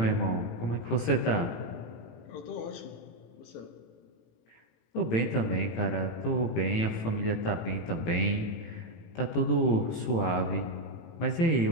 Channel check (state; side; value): late; right; 18 ms